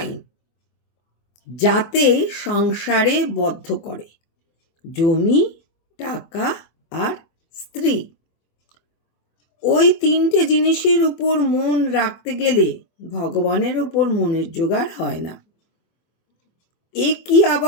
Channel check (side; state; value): right; late; 24 ms